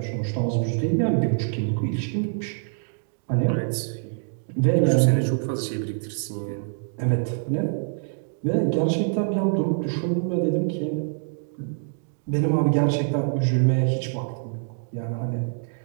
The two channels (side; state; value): left; silent; digital silence